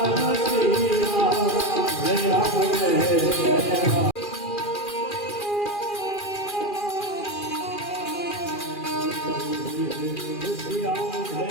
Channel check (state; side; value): late; right; 2.4 ms